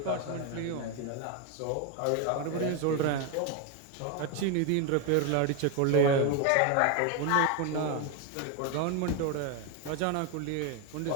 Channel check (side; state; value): both; different; correlation 0.02